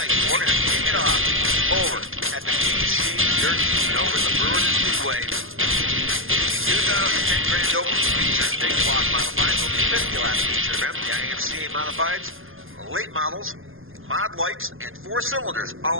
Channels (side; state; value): left; late; 0.59 ms